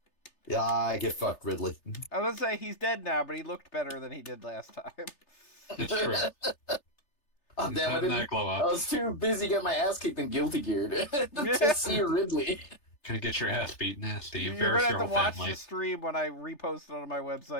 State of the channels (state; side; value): late; right; 3.3 ms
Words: Yeah, I get fucked, Ridley. I was gonna say he's dead now, but he looked better than he did last time. It's true. Oh, He's damn, having that glow I up. was too busy getting my ass kicked and guilty geared to see Ridley. Gonna get your ass beat nasty. You're Embarrass gonna your have to whole watch family. the stream when I repost it on my